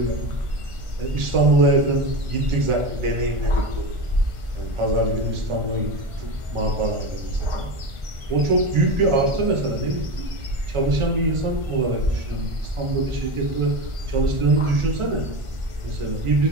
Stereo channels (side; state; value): left; late; 1.4 ms